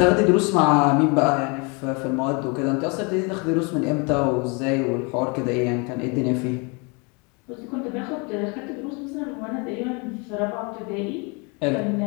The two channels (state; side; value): quieter; right; 31.6 dB